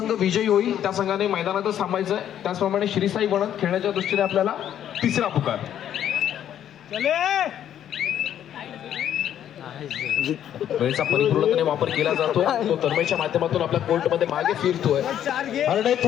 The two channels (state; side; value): quieter; right; 10.4 dB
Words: विजयी होईल त्या संघाने मैदानातच थांबायचं आहे. त्याचप्रमाणे श्रीसाई वणंद खेळण्याच्या दृष्टीने आपल्याला तिसरा पुकार. वेळेचा परिपूर्णपणे वापर केला जातो. तो तन्मयच्या माध्यमातून आपल्या कोर्टमध्ये मागे फिरतोय. हरणे